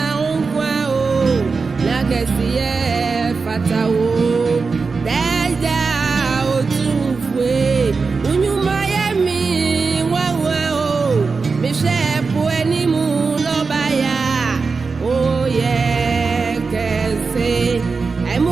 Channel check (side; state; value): left; quieter; 4.6 dB